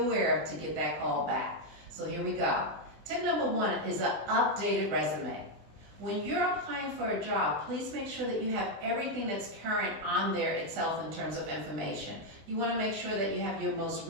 of to get that call back? So here we go. Tip number one is an updated resume. When you're applying for a job, please make sure that you have everything that's current on there itself in terms of information. You want to make sure that you have your most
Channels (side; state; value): left; late; 20 ms